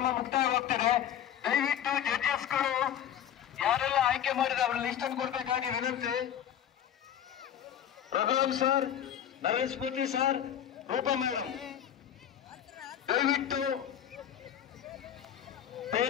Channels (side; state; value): right; quieter; 10.0 dB